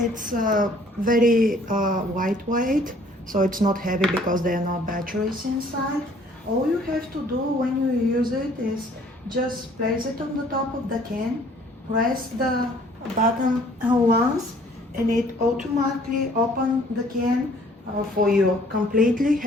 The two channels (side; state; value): both; normal; correlation 0.57